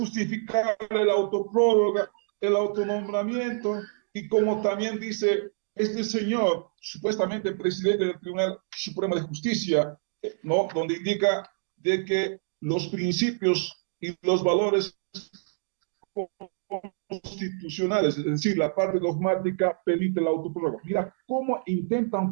la autoprórroga, el autonombramiento, y como también dice este señor, supuestamente presidente del Tribunal Supremo de Justicia, ¿no? Donde indica de que los principios y los valores constitucionales, es decir, la parte dogmática permite la autoprórroga. Mira cómo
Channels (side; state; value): left; silent; digital silence